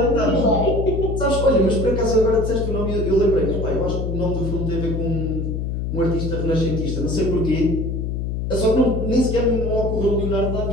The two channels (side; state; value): left; noise; hum, 2 dB below the sound